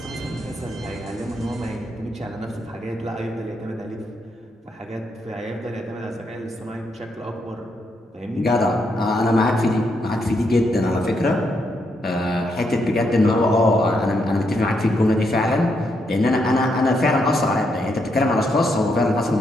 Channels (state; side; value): normal; both; correlation 0.78